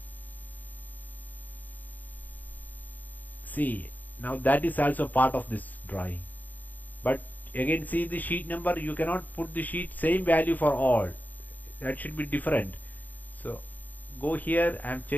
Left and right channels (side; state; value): right; late; 0.082 ms